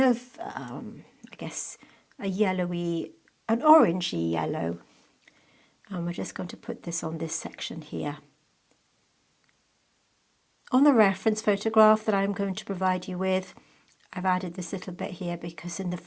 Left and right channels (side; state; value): both; identical; correlation 1.00